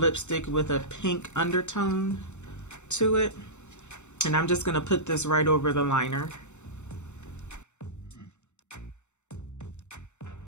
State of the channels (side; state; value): right; late; 0.83 ms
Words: with a pink undertone to it, and I'm just gonna put this right over the liner.